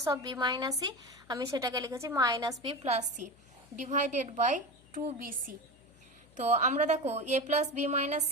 of B minus C, আমি সেটাকে লিখেছি minus B plus C divided by 2bc। তো আমরা দেখো A plus B minus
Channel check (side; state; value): left; noise; hum, 28 dB below the sound